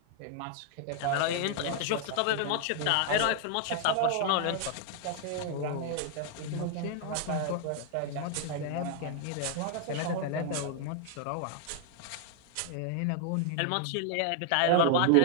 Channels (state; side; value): different; both; correlation 0.00